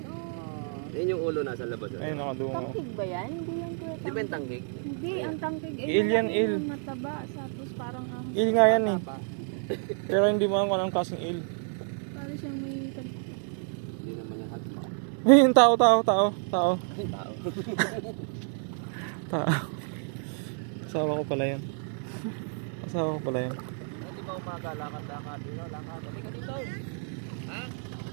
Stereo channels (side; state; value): left; silent; 56 dB below the other